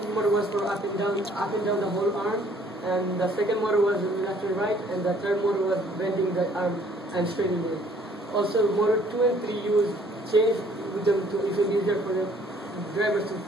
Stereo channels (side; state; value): both; normal; correlation 0.59